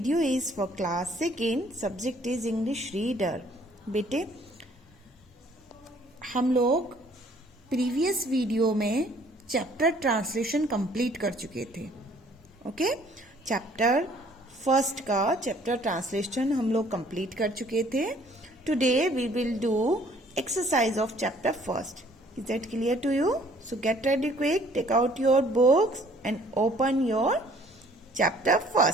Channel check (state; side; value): normal; both; correlation 0.58